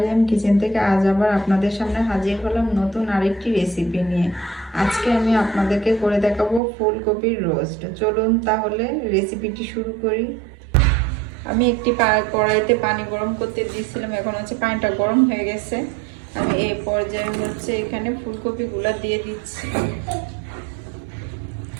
kitchen থেকে আজ আবার আপনাদের সামনে হাজির হলাম নতুন আরেকটি রেসিপি নিয়ে। আজকে আমি আপনাদেরকে করে দেখাবো ফুলকপির রোস্ট। চলুন তাহলে রেসিপিটি শুরু করি। আমি একটি কড়াইতে পানি গরম করতে দিয়েছিলাম, এখন হচ্ছে পানিটা গরম হয়ে গেছে। আমি এই পর্যায়ে হচ্ছে এখানে ফুলকপিগুলো দিয়ে দিচ্ছি।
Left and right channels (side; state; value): left; drops out; at 6.6 s